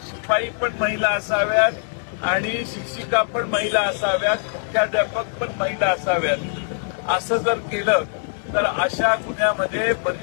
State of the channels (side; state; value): right; silent; 64 dB below the other